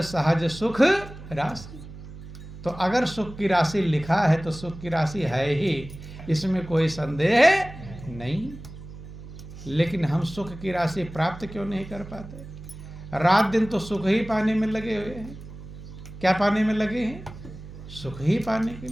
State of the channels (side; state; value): right; noise; hum, 14 dB below the sound